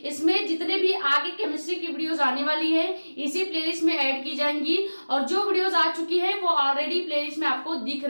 इसमें जितने भी आगे केमिस्ट्री की वीडियोस आने वाली है इसी प्लेलिस्ट में ऐड की जाएंगी, और जो वीडियोस आ चुकी है वो ऑलरेडी प्लेलिस्ट में आपको दिख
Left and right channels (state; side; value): inverted; both; correlation -1.00